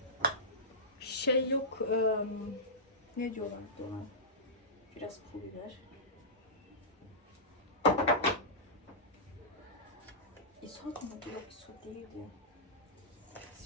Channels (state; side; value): normal; both; correlation -0.16